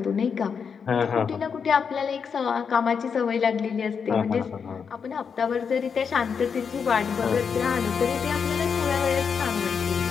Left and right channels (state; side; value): quieter; right; 6.4 dB